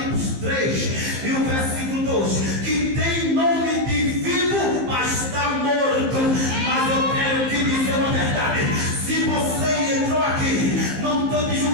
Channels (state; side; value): late; left; 15 ms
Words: 3 e o versículo 2, que tem nome de vivo, mas está morto. Mas eu quero te dizer uma verdade: se você entrou aqui, não estou te